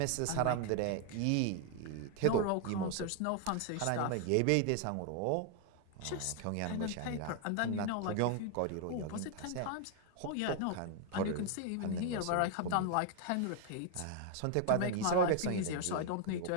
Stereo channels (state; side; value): different; both; correlation 0.00